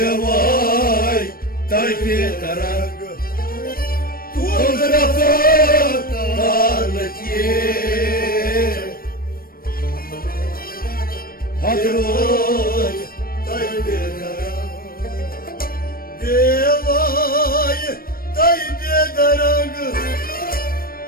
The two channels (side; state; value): right; late; 0.43 ms